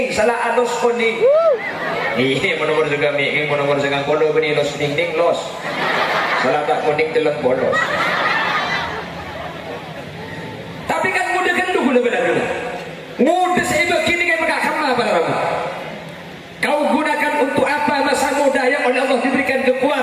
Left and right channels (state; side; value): identical; both; correlation 1.00